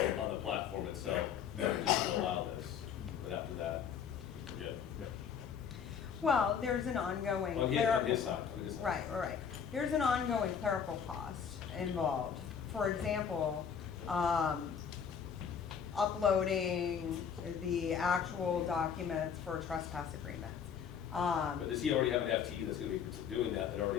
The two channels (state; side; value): quieter; right; 7.4 dB